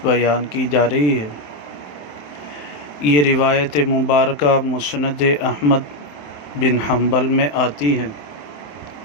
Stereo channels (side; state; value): right; late; 27 ms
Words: بیان کی جا رہی ہے۔ یہ روایت مبارکہ مسند احمد بن حنبل میں آتی ہے،